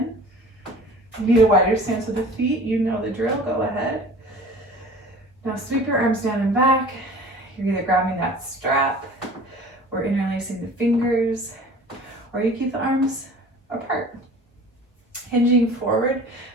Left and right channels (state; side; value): normal; both; correlation 0.43